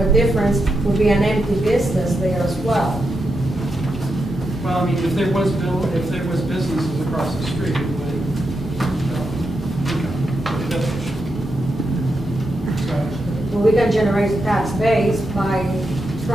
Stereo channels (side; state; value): both; normal; correlation 0.85